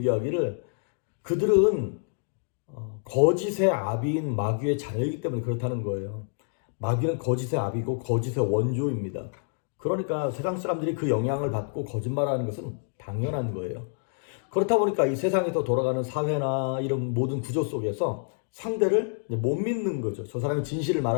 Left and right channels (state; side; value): silent; right; digital silence